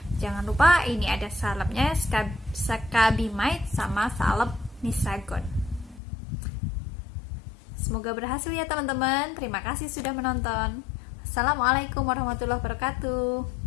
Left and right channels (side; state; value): right; drops out; at 6.0 s